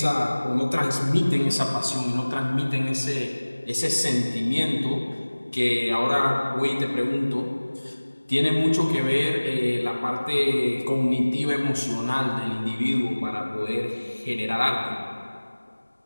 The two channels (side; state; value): both; inverted; correlation -1.00